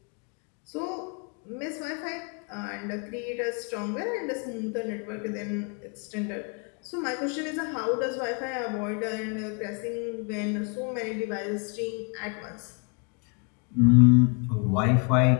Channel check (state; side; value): quieter; right; 35.1 dB